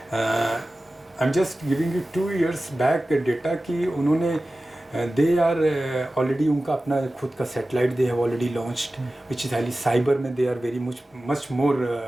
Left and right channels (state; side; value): normal; both; correlation 0.95